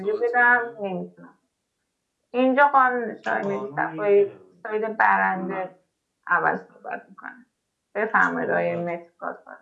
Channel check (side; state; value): both; identical; correlation 1.00